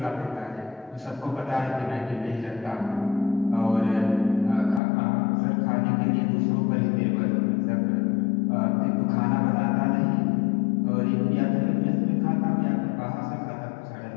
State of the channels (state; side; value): drops out; right; at 4.8 s